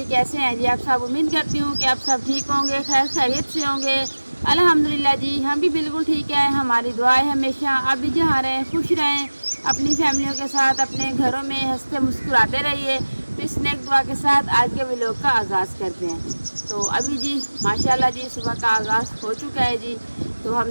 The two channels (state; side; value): inverted; both; correlation -1.00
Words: कैसे हैं जी आप सब। उम्मीद करती हूँ कि आप सब ठीक होंगे, खैर खैरियत से होंगे। अल्हम्दुलिल्लाह जी, हम भी बिल्कुल ठीक है। हमारी दुआ है हमेशा आप भी जहाँ रहें खुश रहें, अपनी फैमिलियों के साथ अपने घरों में हंसते मुस्कुराते रहिए। तो इस नेक दुआ के साथ आज के व्लॉग का आगाज़ करते हैं। तो अभी जी माशाल्लाह जी सुबह का आगाज़ हो चुका है जी। तो